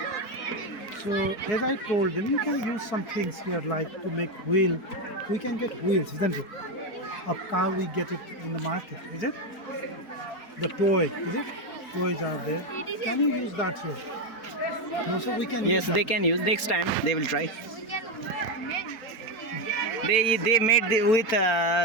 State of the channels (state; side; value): late; right; 4.3 ms